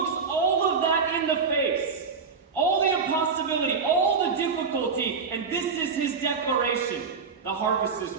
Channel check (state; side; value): quieter; left; 5.3 dB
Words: all of that in the face. All the impossibility, all the difficulty, and this is his declaration. The harvest is